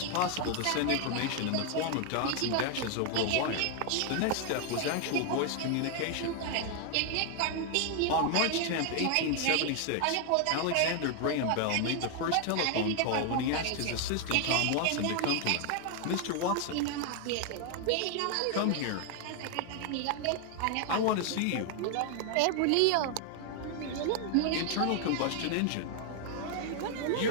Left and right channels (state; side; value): different; both; correlation 0.00